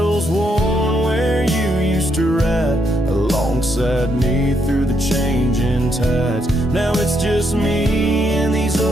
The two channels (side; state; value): both; normal; correlation 0.76